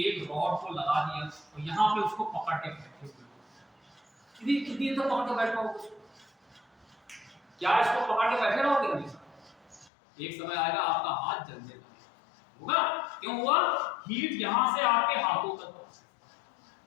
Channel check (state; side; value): drops out; right; at 9.9 s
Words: रॉड को लगा दिया और यहाँ पे उसको पकड़ के बैठे हुए, कितनी देर तक पकड़ के बैठ पाओगे? क्या इसको पकड़ के बैठे रहोगे हमेशा? एक समय आएगा आपका हाथ जल जाएगा, होगा। क्यों हुआ? हीट यहां से आपके हाथों तक पहुंची,